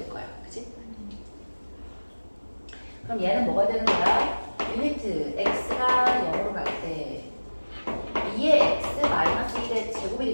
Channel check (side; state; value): both; inverted; correlation -1.00